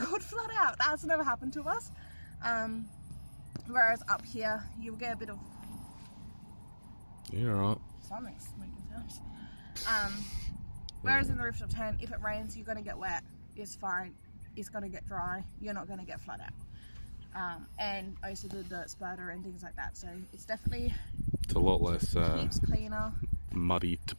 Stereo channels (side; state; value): both; inverted; correlation -1.00